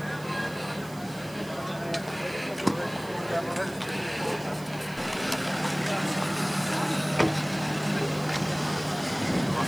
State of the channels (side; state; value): right; noise; hiss, 20 dB below the sound